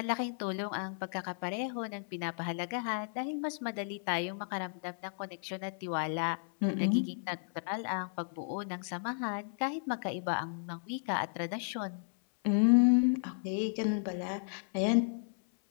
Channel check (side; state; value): right; silent; 55 dB below the other